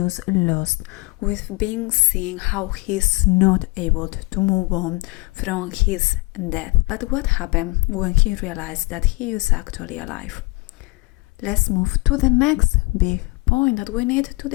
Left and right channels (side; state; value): right; quieter; 25.2 dB